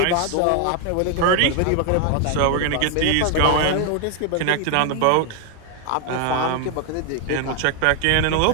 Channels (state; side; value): different; both; correlation 0.01